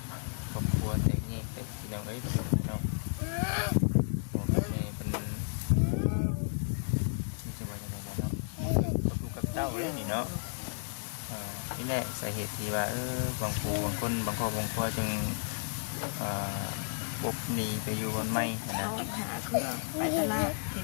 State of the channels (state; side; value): silent; right; 56 dB below the other